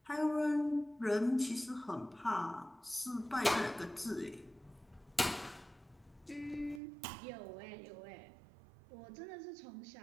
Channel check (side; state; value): left; drops out; at 6.8 s